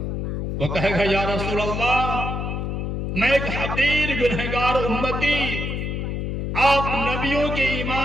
وہ کہے گا یا رسول اللہ میں ایک حقیر گنہگار امتی، آپ نبیوں کے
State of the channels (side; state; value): left; noise; hum, 2 dB below the sound